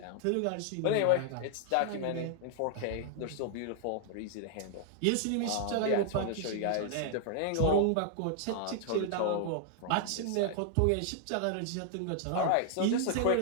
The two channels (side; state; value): both; different; correlation 0.00